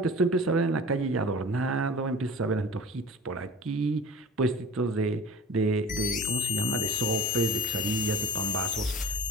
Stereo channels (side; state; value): both; normal; correlation 0.39